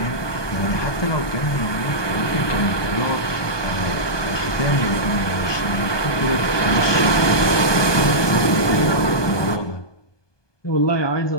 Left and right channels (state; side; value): late; right; 1.2 ms